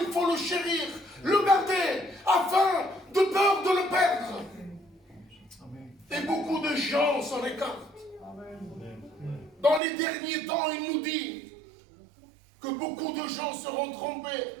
faut le chérir. Le garder. Afin de peur de le perdre. Et beaucoup de gens s'en écartent. Dans les derniers temps, il nous dit que beaucoup de gens seront trompés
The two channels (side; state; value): left; drops out; at 9.8 s